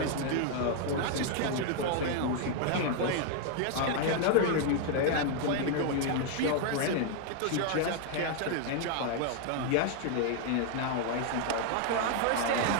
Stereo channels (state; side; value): different; both; correlation 0.00